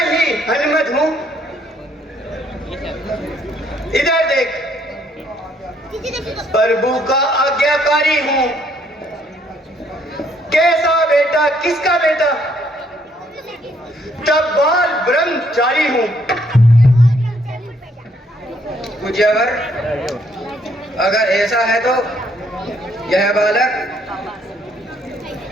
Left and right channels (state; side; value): normal; both; correlation 0.68